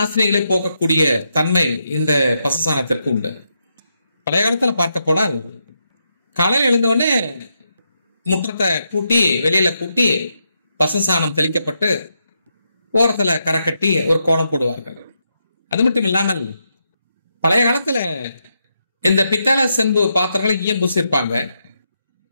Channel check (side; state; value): both; inverted; correlation -0.82